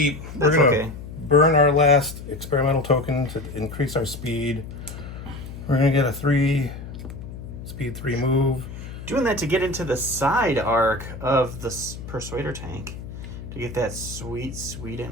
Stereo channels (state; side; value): noise; left; hum, 11 dB below the sound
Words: That's we're going to okay. burn our last experimental token to increase our speed. We're going to get a 3 speed 3 move. Doing that to get into the side arc of the Persuader tank to get that sweet, sweet